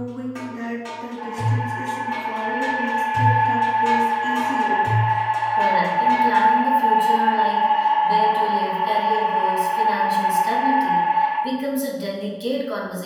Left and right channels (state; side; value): identical; both; correlation 1.00